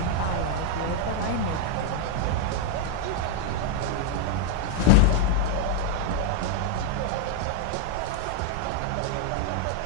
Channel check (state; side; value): different; both; correlation 0.00